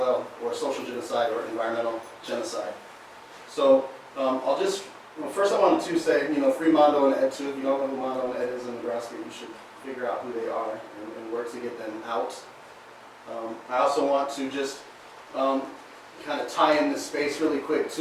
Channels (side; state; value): both; identical; correlation 1.00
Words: or social genocide or environmental genocide. So first I wanted to say, free Mondo and Ed too. If you don't know who Mondo and Ed is in Nebraska, you should figure out who they are and work to get them out. I also want to just kind of tie in this space really quick